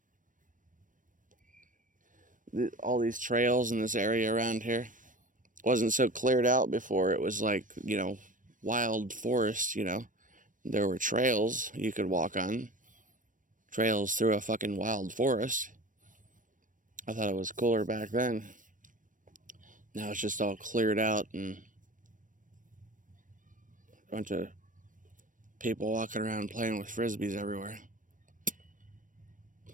All these trails in this area around here wasn't so cleared out before. It was like, you know, wild forest, you know. There were trails you could walk on. Trails through a fucking wild forest. I thought it was cooler back then. Now it's just all cleared out and a bunch of people walking around playing with frisbees everywhere.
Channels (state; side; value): late; left; 0.38 ms